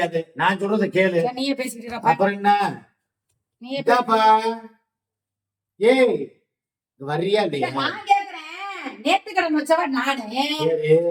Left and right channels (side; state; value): both; identical; correlation 1.00